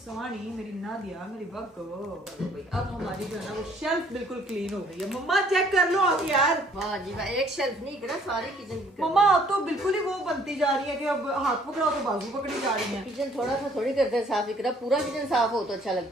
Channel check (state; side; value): normal; both; correlation 0.60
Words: मेरी नादिया, मेरी बग्गो। अब हमारी जो है ना वो शेल्फ बिल्कुल क्लीन हो गई है। मम्मा चेक कर लो आके यार। वाह जी वाह, एक शेल्फ नहीं करा, सारी किचन की। मम्मा अब तो बिल्कुल ही वो बनती जा रही है कि अब हाथ पकड़ाओ तो बाजू पकड़ी जा रही है। किचन थोड़ा सा थोड़ी करते हैं साफ, इकरा पूरा किचन साफ हो तो अच्छा